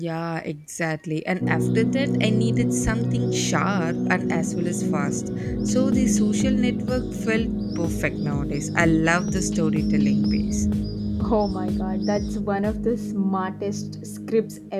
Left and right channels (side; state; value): both; identical; correlation 1.00